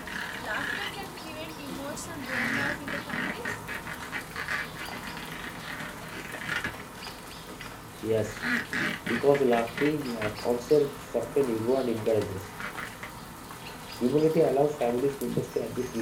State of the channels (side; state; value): both; identical; correlation 1.00